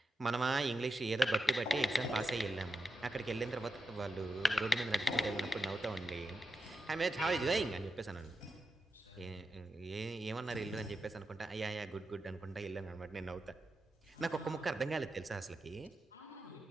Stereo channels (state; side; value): normal; both; correlation 0.88